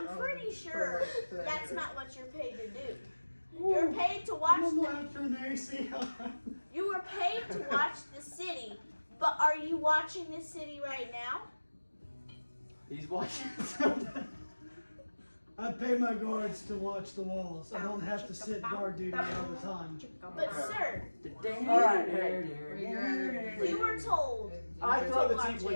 pretty sure that's not what you're paid to do. You're paid to watch I'm the. gonna turn the AC on. You were paid to watch the city, but are you watching the city right now? he's watching something. I pay my guards to watch the walls. I don't have to sit guard duty all the time. But sir, All right, hey. you were told. I throw the Watch tiefling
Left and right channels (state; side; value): inverted; both; correlation -1.00